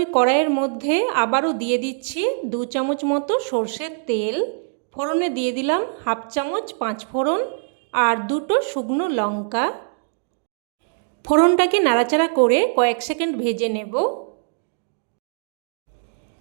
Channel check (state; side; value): silent; left; 64 dB below the other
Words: কড়াইয়ের মধ্যে আবারও দিয়ে দিচ্ছি 2 চামচ মতো সর্ষের তেল। ফোড়নে দিয়ে দিলাম 1/2 চামচ 5 ফোড়ন আর 2টো শুকনো লঙ্কা। ফোড়নটাকে নাড়াচাড়া করে কয়েক সেকেন্ড ভেজে নেব।